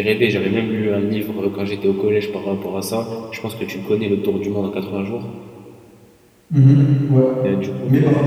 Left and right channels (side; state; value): both; identical; correlation 1.00